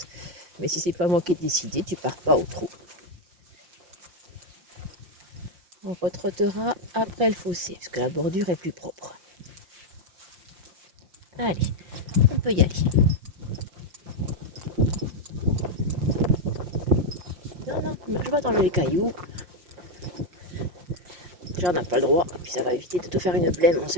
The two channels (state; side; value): late; left; 5.6 ms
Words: Mais si c'est pas moi qui ai décidé, tu pars pas au trou. On retrottera après le fossé, parce que la bordure est plus propre. Allez, on peut y aller. Non, non, je vais dans les cailloux. J'en ai pas le droit, puis ça va éviter de te faire une blême, on